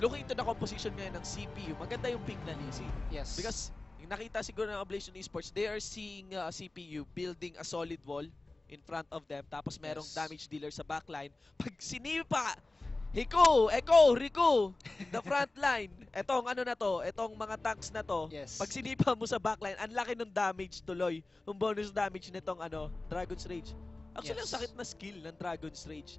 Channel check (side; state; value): right; quieter; 3.1 dB